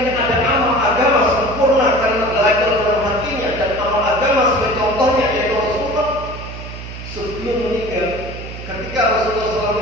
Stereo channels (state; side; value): noise; right; hum, 11 dB below the sound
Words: ada amal agama sempurna karena belajar dalam hatinya dan amal agama sebagai contohnya yaitu Rasulullah sebelum meninggal, ketika Rasulullah